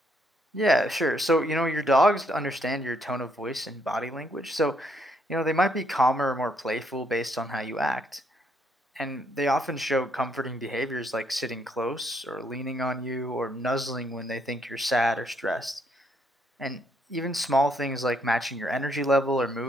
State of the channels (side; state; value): both; normal; correlation 0.72